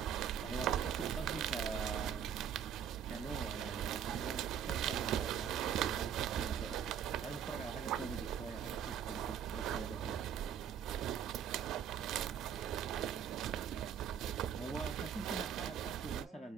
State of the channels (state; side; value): quieter; left; 8.7 dB